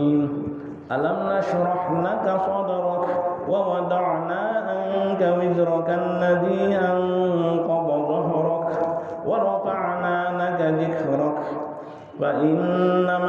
ألم نشرح لك صدرك ووضعنا عنك وزرك الذي أنقض ظهرك ورفعنا لك ذكرك فإن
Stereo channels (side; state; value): both; identical; correlation 1.00